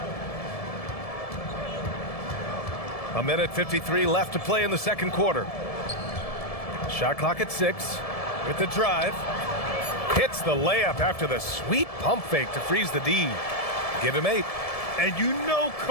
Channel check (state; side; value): late; right; 1.7 ms